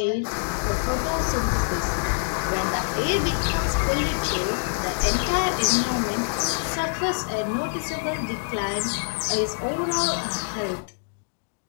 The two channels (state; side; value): silent; right; digital silence